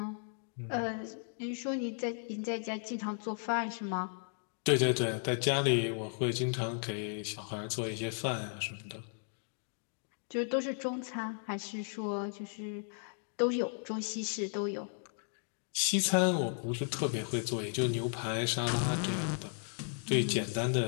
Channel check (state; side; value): silent; right; 54 dB below the other